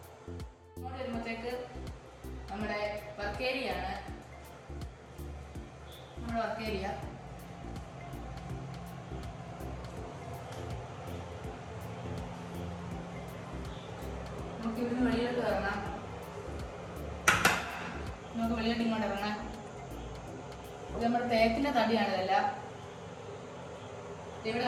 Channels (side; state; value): both; identical; correlation 1.00